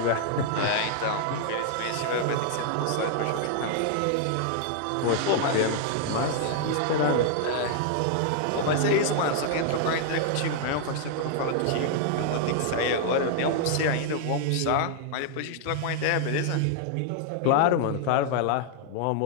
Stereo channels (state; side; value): different; both; correlation 0.00